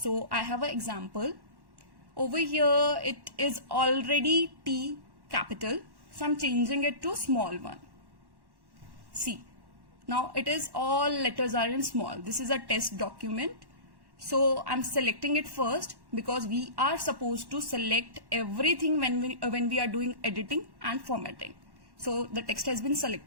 I have an example. Over here it is already T capital. So I'm changing it to small one. See, now it is all letters are in small. This is a test document. So I'm selecting it first because we are supposed to select everything when we are doing editing and formatting. So the text has been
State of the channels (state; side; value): late; left; 1.1 ms